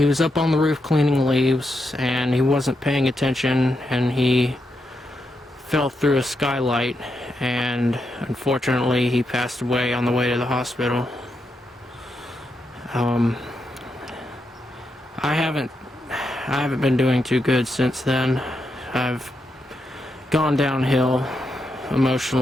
was up on the roof cleaning leaves, and he wasn't paying attention, and he fell through a skylight, and unfortunately he passed away on the way to the hospital. I haven't been doing too good since then. I've gone downhill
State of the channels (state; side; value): normal; both; correlation 0.84